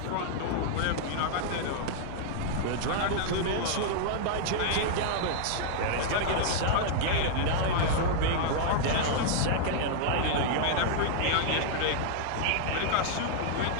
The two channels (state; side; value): different; both; correlation -0.01